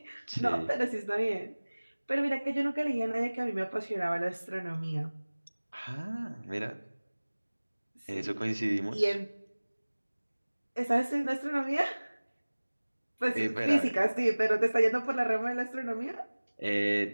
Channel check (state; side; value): inverted; both; correlation -1.00